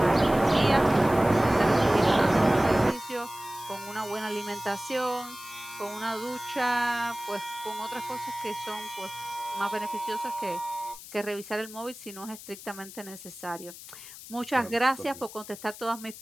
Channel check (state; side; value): noise; left; hiss, 15 dB below the sound